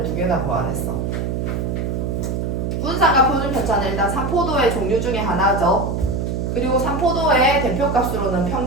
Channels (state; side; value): noise; right; hum, 1 dB below the sound